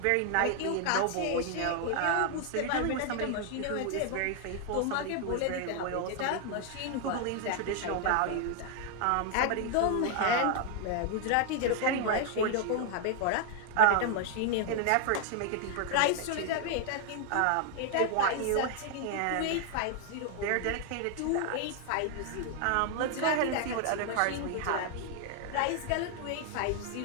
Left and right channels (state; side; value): different; both; correlation 0.00